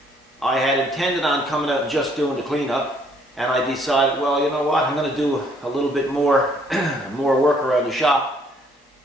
I had intended on coming out and just doing the cleanup, and I decided, well, you know what, I'm going to do a little bit more, more work around the shop,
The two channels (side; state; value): both; normal; correlation 0.65